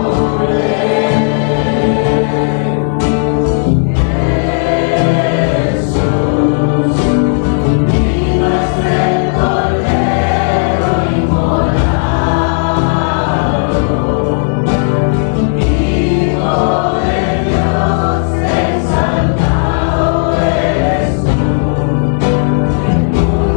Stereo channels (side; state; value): right; silent; 60 dB below the other